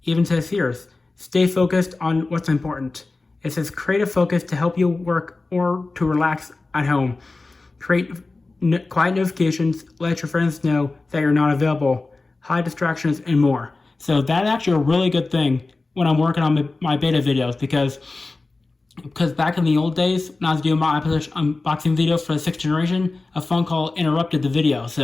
It even says here, stay focused on what's important. It says create a focus to help you work or to relax at home. Create quiet notifications, let your friends know that you're not available, hide distractions, and more. So that's actually a really good thing when I'm working on my beta videos because back in the old days, when I was doing my unboxing videos for the 6th generation, a phone call interrupted the video.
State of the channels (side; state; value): right; quieter; 3.5 dB